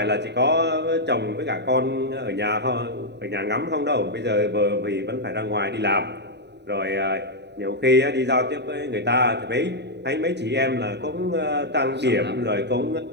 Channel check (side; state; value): left; late; 0.50 ms